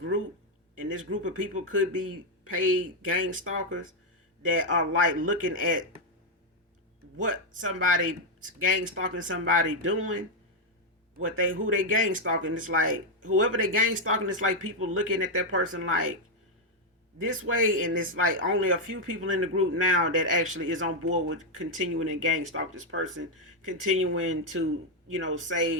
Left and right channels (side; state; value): both; normal; correlation 0.01